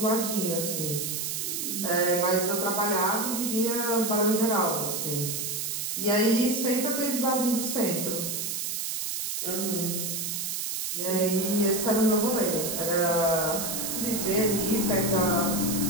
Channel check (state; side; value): noise; right; hiss, 2 dB below the sound